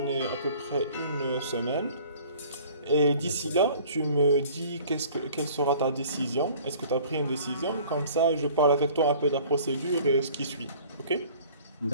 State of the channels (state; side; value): inverted; both; correlation -0.50